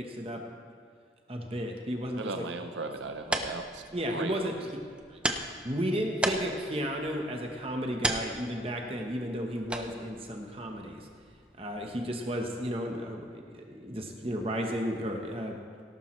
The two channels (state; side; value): normal; both; correlation 0.59